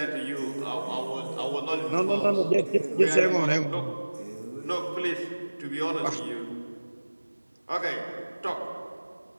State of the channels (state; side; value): inverted; both; correlation -1.00